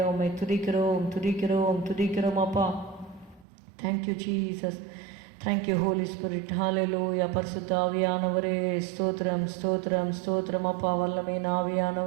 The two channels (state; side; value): drops out; left; at 3.5 s